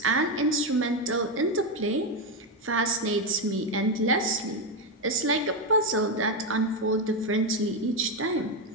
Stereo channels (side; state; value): both; normal; correlation 0.08